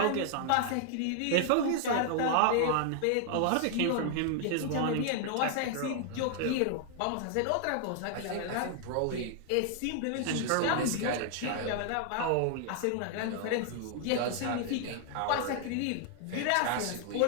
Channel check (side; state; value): both; different; correlation 0.00